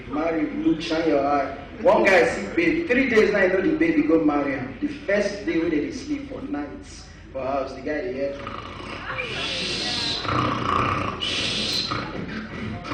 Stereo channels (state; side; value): identical; both; correlation 1.00